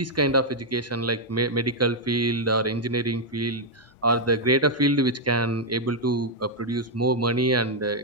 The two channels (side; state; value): both; normal; correlation -0.02